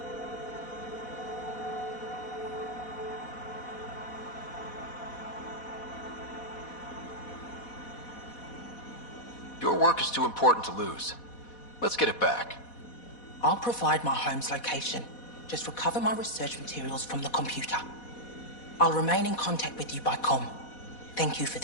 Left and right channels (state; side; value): late; right; 4.1 ms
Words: Your work is too important to lose. Let's get it back. I'll provide my home's location. Just recover my research materials from the computer. I'll remain in contact with you by comm. Thank you for